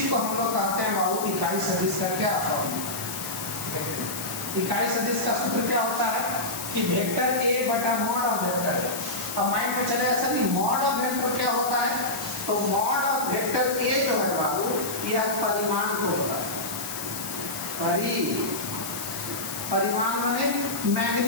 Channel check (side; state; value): left; noise; hiss, 7 dB below the sound